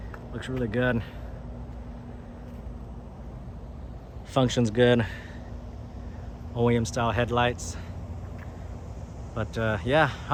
Looks really good. Functions good. OEM style headlights. But yeah,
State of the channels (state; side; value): identical; both; correlation 1.00